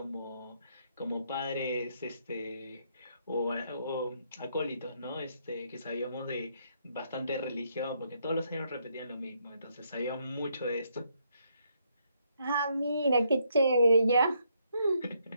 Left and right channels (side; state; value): both; inverted; correlation -0.74